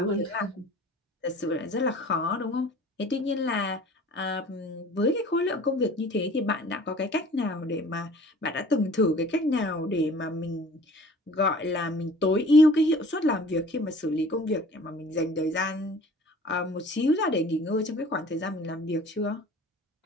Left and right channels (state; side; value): normal; both; correlation 0.47